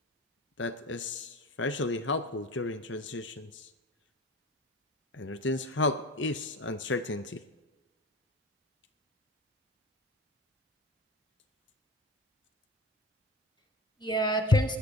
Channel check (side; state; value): both; normal; correlation 0.33